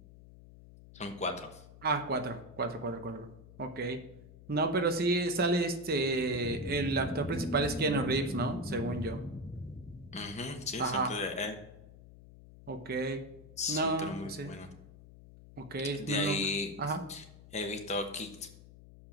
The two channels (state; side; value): noise; left; hum, 19 dB below the sound